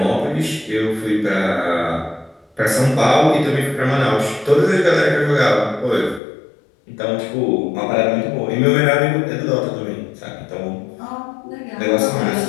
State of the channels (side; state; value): right; drops out; at 6.2 s